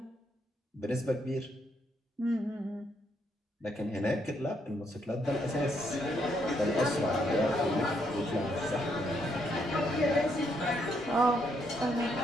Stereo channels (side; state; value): both; normal; correlation 0.74